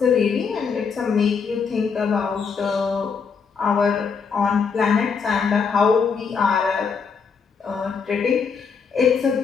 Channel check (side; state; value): right; quieter; 5.7 dB